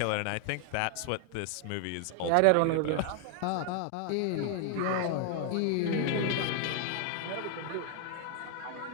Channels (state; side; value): different; both; correlation 0.00